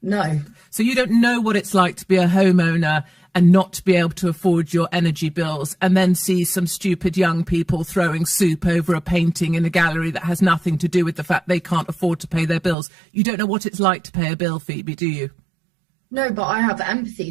No. So you don't know what it's like to be a homeowner and not to be able to afford your energy bills, and then see some stupid young people throwing soup over a painting in a gallery that has nothing to do with the fact they can't afford to pay their bills. You don't know what it's like to pay a bill, Phoebe, do you? No, but I have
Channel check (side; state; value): left; drops out; at 12.8 s